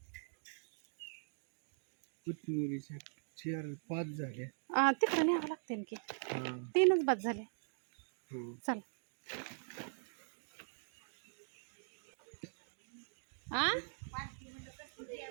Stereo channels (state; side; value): silent; left; digital silence